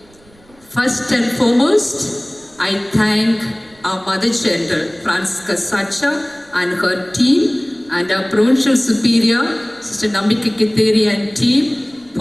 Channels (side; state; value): right; noise; rumble, 29 dB below the sound